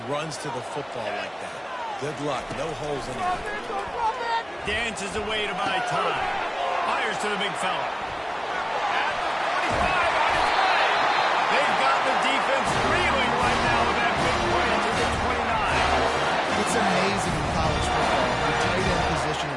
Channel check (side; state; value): both; identical; correlation 1.00